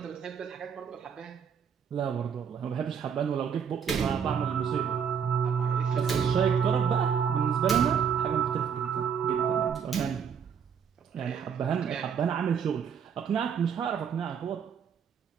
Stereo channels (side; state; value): left; quieter; 7.3 dB